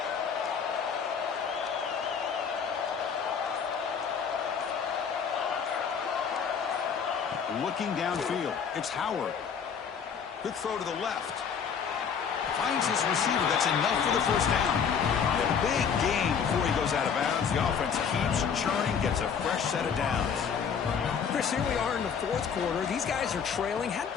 Looking downfield. It's Howard. Quick throw to the left. Finds his receiver. That's enough for the 1st down. A big gain before he goes out of bounds. The offense keeps churning, gets a fresh set of downs. Chris, here we are in the 4th quarter. These guys are trailing. Hadn't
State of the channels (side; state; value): right; quieter; 6.8 dB